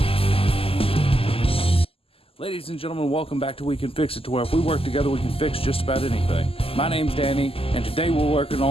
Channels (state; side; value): late; right; 0.27 ms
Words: Ladies and gentlemen, welcome back to We Can Fix It, to where if we work together we can fix just about anything. My name's Danny, and today we're working